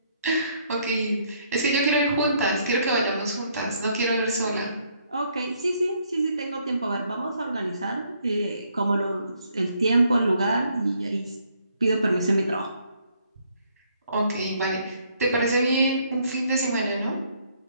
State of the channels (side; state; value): both; inverted; correlation -0.69